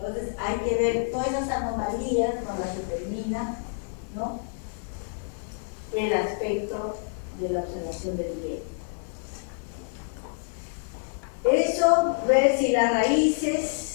hay que ver todas esas anomalías, nos las determina, ¿no?, el aspecto de la observación del diente. Eso, ver si las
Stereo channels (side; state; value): right; silent; 60 dB below the other